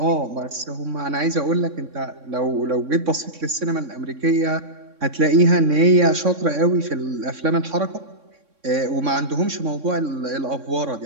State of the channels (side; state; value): left; late; 3.6 ms